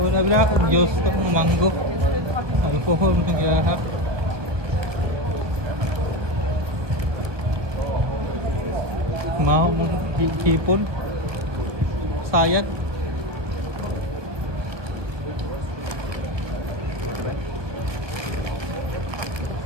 Sabi na ako, Diyos to, mango. Alcohol, nagyahap. Mau mong hipon. Sayat.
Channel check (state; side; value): late; left; 1.5 ms